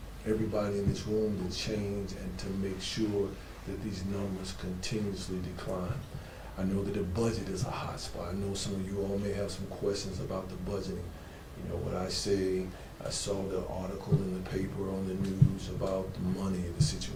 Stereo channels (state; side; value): identical; both; correlation 1.00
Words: everybody in this room to change and to make sure that these numbers continuously decline. I know that the budget is a hot spot. I know some of you all may have some questions about the budgeting. You know, what I say, I saw the article in the paper on the news about the money, the